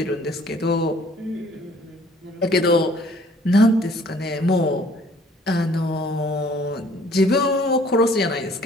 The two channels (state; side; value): normal; both; correlation 0.57